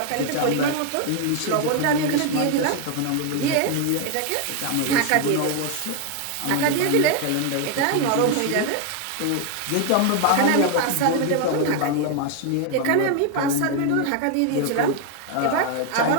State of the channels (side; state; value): both; different; correlation 0.01